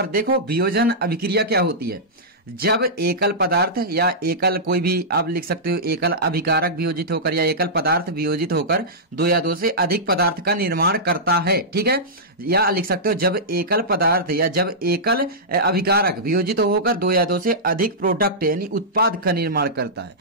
देखो वियोजन अभिक्रिया क्या होती है। जब एकल पदार्थ या एकल कोई भी आप लिख सकते हो, एकल अभिकारक वियोजित होकर या एकल पदार्थ वियोजित होकर 2 या 2 से अधिक पदार्थ का निर्माण करता है, ठीक है। या लिख सकते हो जब एकल पदार्थ या जब एकल अभिकारक वियोजित होकर 2 या 2 से अधिक प्रोडक्ट यानी उत्पाद का निर्माण करता है,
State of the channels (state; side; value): normal; both; correlation -0.13